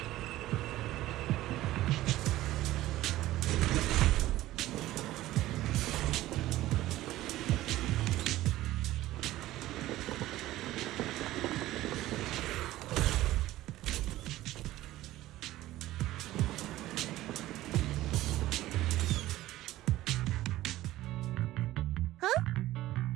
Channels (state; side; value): quieter; left; 15.8 dB